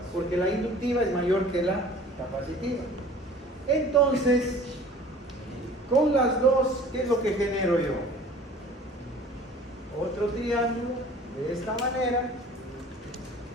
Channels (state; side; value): normal; both; correlation 0.47